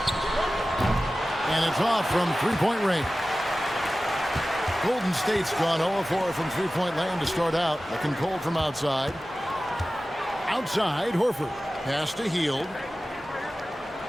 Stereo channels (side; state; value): both; normal; correlation 0.96